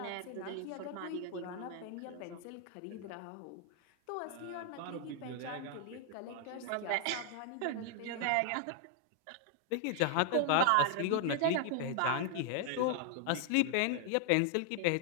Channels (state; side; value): different; both; correlation 0.00